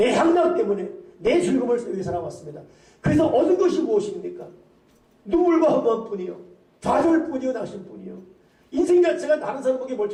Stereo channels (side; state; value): both; identical; correlation 1.00